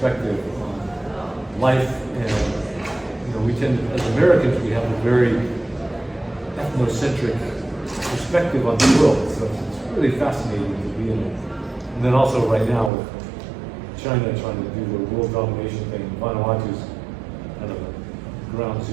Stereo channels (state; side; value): drops out; left; at 12.9 s